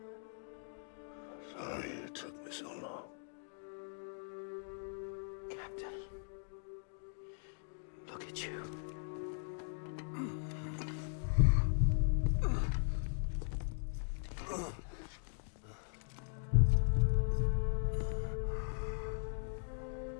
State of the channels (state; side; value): silent; right; digital silence